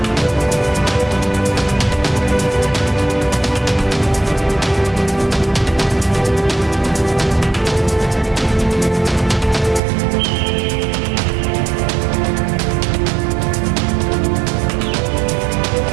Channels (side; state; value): left; drops out; at 9.8 s